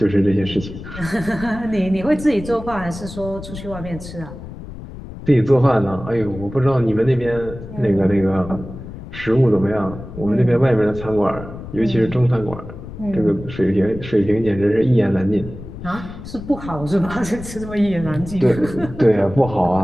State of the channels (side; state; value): left; noise; rumble, 12 dB below the sound